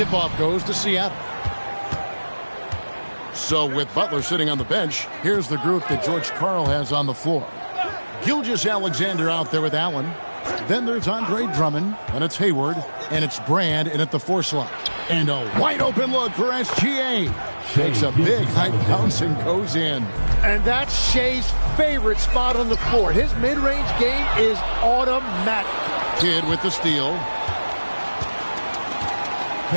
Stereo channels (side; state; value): both; inverted; correlation -1.00